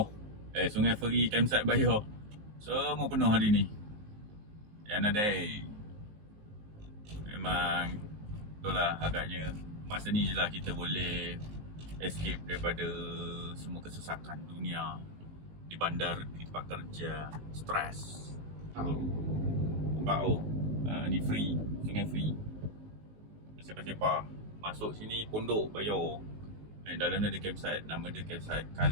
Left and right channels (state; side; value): late; left; 19 ms